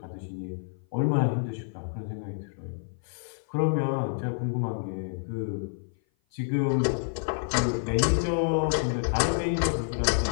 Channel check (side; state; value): right; silent; 55 dB below the other